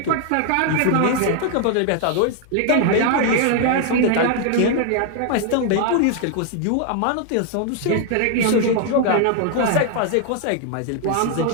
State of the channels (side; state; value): both; different; correlation 0.00